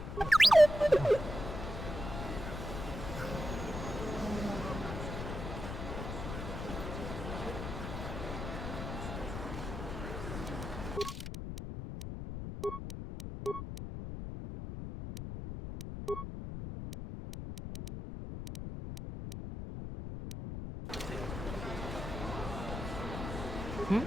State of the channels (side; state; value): left; noise; rumble, 6 dB below the sound